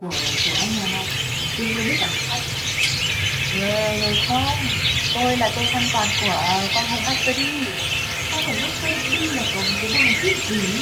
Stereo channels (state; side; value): identical; both; correlation 1.00